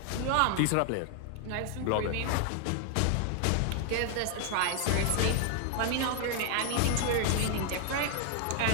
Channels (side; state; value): both; different; correlation 0.00